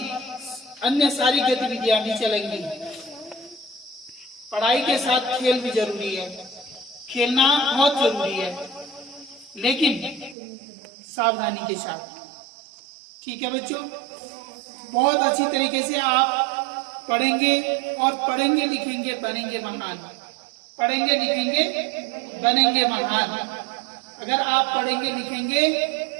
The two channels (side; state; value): left; drops out; at 10.4 s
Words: अन्य सारी गतिविधियां भी चलेंगी। पढ़ाई के साथ खेल भी जरूरी है, खेलना बहुत जरूरी है, लेकिन सावधानी के साथ, ठीक है बच्चों। बहुत अच्छी तरीके से आप पढ़ेंगे और पढ़ेंगे लिखेंगे बनेंगे महान, पढ़ेंगे लिखेंगे बनेंगे महान। अगर आप पढ़ेंगे